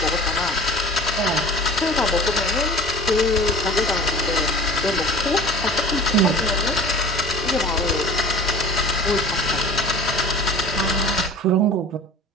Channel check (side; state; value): both; normal; correlation 0.40